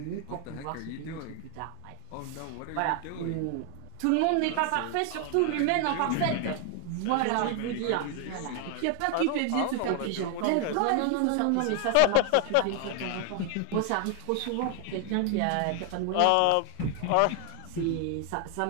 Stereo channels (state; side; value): different; both; correlation 0.00